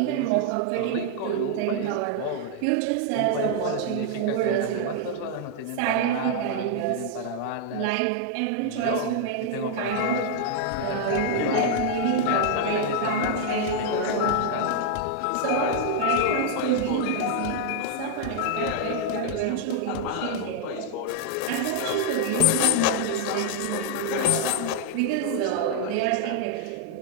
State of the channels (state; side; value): different; both; correlation 0.00